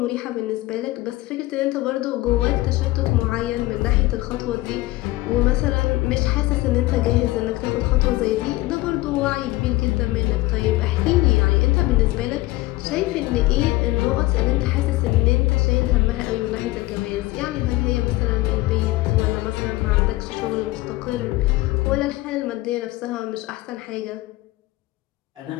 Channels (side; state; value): right; quieter; 19.1 dB